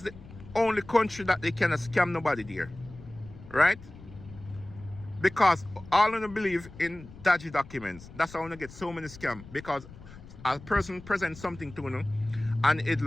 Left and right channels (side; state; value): left; noise; rumble, 18 dB below the sound